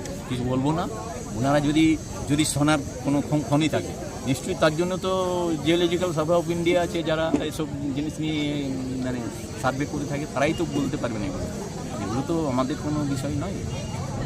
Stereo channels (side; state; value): both; identical; correlation 1.00